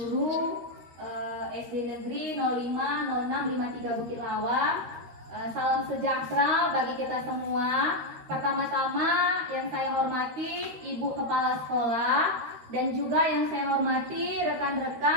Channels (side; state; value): left; late; 13 ms